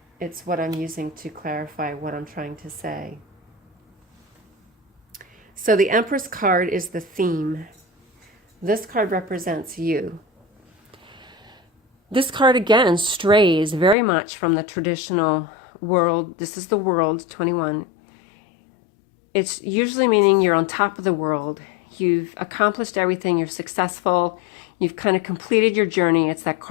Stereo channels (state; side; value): drops out; right; at 14.0 s